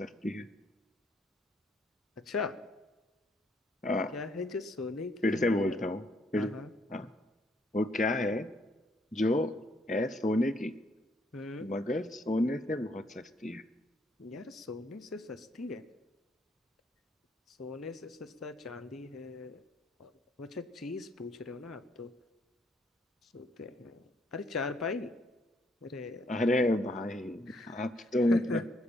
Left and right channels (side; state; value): both; normal; correlation 0.70